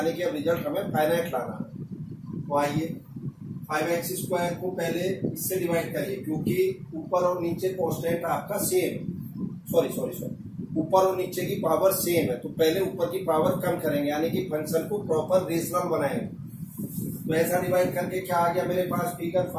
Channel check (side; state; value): both; identical; correlation 1.00